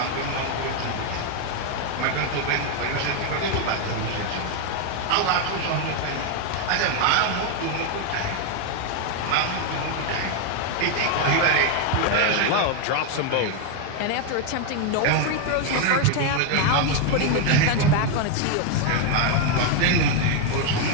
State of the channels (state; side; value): different; both; correlation 0.01